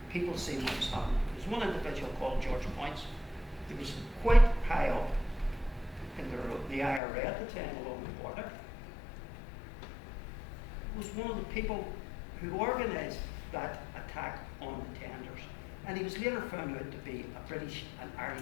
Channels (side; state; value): right; drops out; at 7.0 s